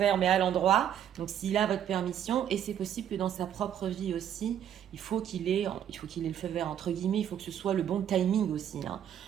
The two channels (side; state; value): left; quieter; 9.9 dB